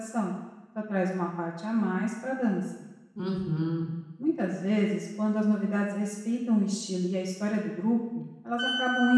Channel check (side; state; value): both; identical; correlation 1.00